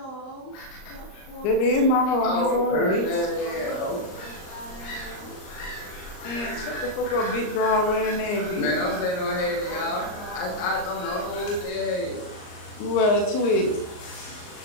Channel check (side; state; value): right; late; 38 ms